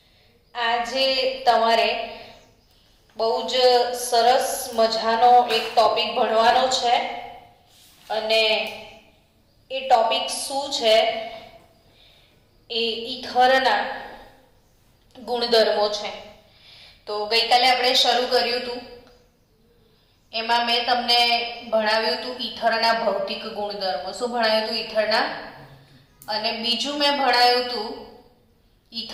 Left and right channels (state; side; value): identical; both; correlation 1.00